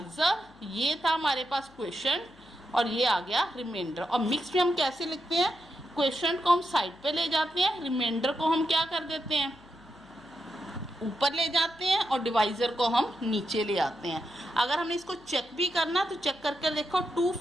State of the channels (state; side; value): noise; left; hum, 27 dB below the sound